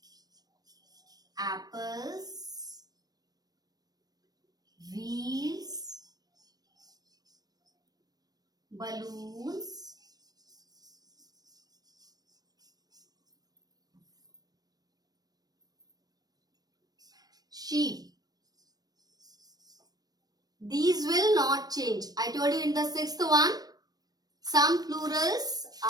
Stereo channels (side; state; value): left; late; 0.19 ms